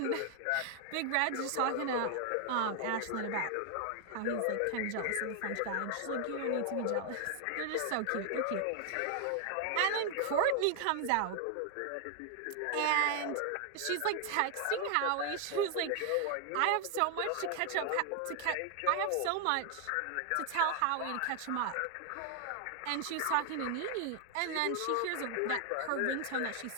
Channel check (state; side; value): different; both; correlation 0.00